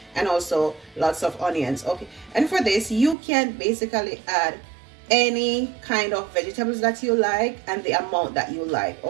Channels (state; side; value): drops out; left; at 3.2 s